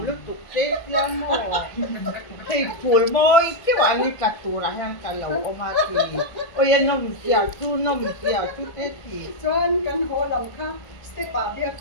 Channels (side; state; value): right; late; 1.6 ms